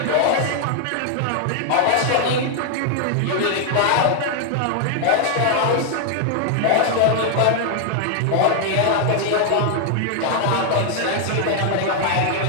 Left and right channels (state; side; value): different; both; correlation 0.00